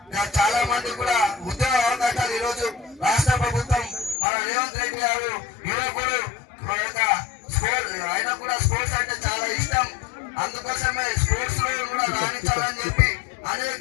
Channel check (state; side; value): drops out; right; at 4.2 s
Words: చాలా మంది కూడా ఉద్యోగ అవకాశాలు ఈరోజు రాష్ట్ర ప్రభుత్వం మన రేవంత్ రెడ్డి గారు యువకుడు ఆయన కూడా స్పోర్ట్స్ అంటే చాలా ఇష్టం. అందుకోసమే స్పోర్ట్స్ లో కూడా రాణించాలని చెప్పి